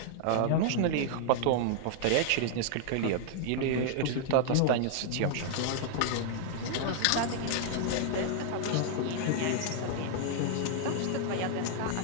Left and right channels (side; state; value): both; different; correlation -0.01